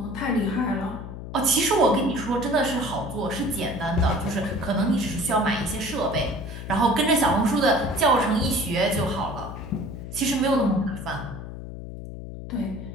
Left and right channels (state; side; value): noise; left; hum, 10 dB below the sound